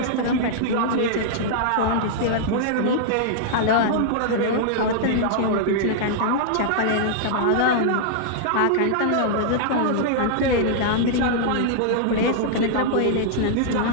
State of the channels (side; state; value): both; different; correlation -0.01